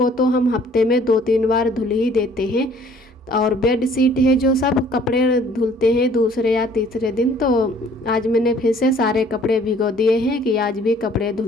तो हम हफ्ते में 2-3 बार धुल ही देते हैं, और बेड शीट है जो सब कपड़े धुलते हैं दूसरे या तीसरे दिन। तो आज मैंने फिर से सारे कपड़े भिगो दिए हैं कि आज भी कपड़े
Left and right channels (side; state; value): both; normal; correlation 0.57